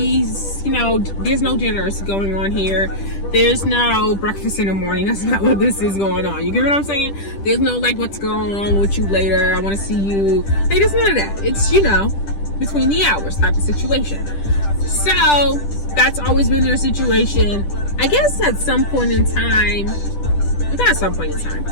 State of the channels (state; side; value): late; right; 10 ms